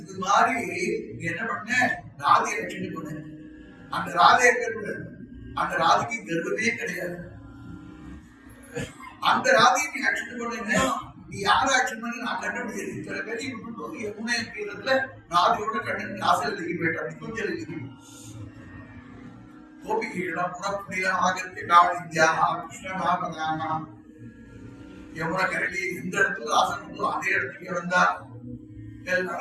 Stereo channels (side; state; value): both; identical; correlation 1.00